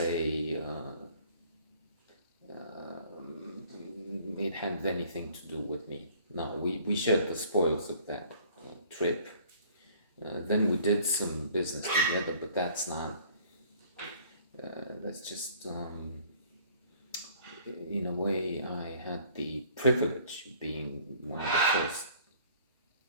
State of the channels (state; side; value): inverted; both; correlation -0.55